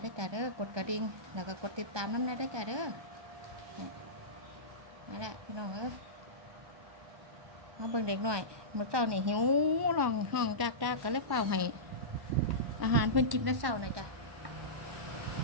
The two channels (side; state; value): left; late; 1.1 ms